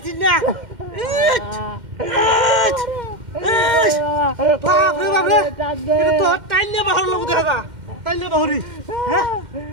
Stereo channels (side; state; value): left; late; 2.1 ms